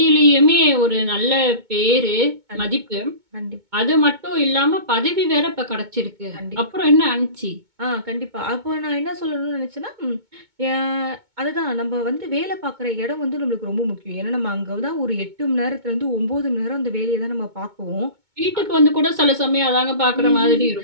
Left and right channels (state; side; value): late; left; 2.2 ms